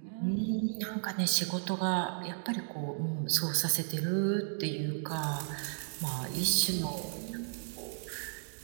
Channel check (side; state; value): left; silent; digital silence